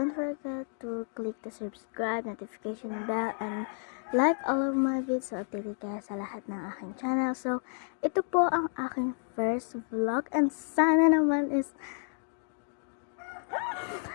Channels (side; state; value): right; silent; 57 dB below the other